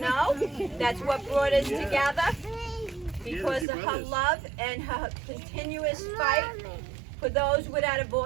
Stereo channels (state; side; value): drops out; left; at 3.7 s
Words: That's what brought us together. Because of her love and her continuous fight for those without a